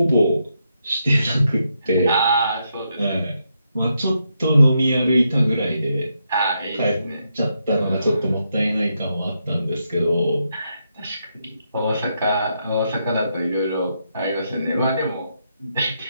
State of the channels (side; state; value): both; inverted; correlation -0.81